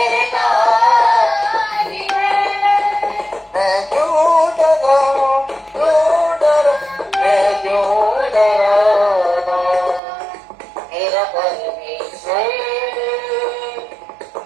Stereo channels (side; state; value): left; drops out; at 10.0 s